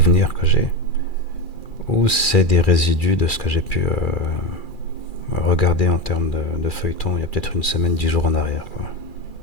que j'ai, ou c'est des résidus de ce que j'ai pu regarder en termes de feuilleton il y a peut-être une semaine, 10 jours en arrière, quoi.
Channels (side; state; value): right; late; 2.4 ms